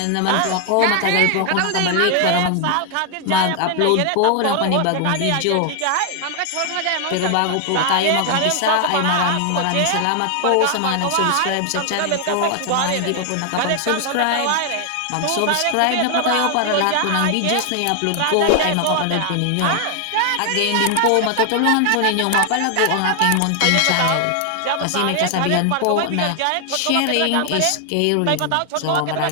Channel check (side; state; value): both; different; correlation 0.00